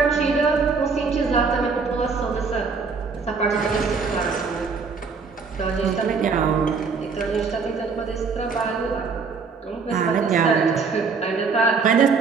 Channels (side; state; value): left; quieter; 5.0 dB